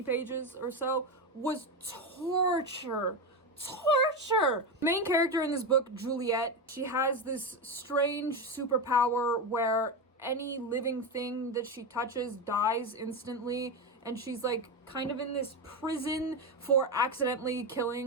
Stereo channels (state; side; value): normal; both; correlation 0.14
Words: pages or so, was torture. Main character in this book, Juliet, she has this strange superpower where any living thing that she touches dies instantly, and she's like kind of in this prison for accidentally